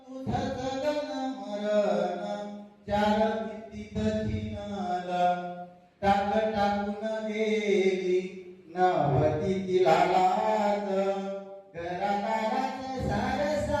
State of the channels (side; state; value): both; identical; correlation 1.00